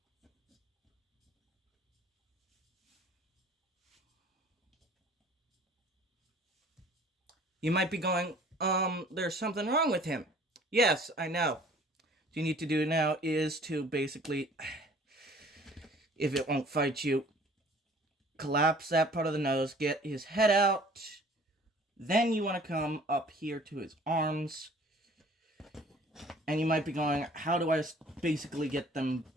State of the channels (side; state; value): both; normal; correlation 0.52